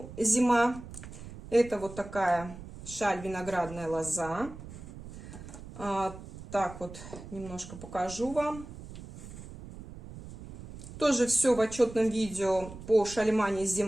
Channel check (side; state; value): right; noise; rumble, 14 dB below the sound